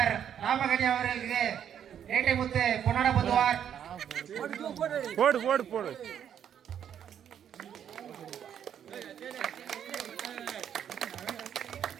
ராமகனி அவர்களுக்கு ஏட்டை முத்து பொன்னாட பொதுவார். போடு போடு போடு.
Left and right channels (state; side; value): quieter; left; 9.2 dB